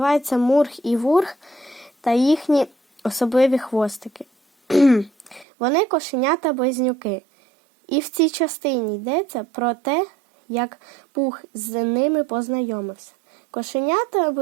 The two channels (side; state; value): left; drops out; at 5.5 s